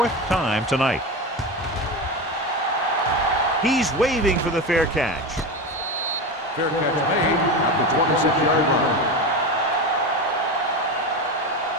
time tonight. He's waving for the fair catch. Fair catch made at the 26-yard line.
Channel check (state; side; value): normal; both; correlation 0.21